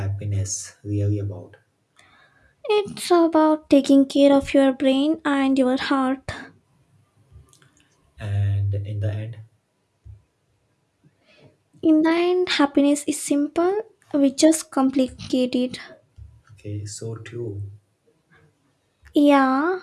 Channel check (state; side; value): identical; both; correlation 1.00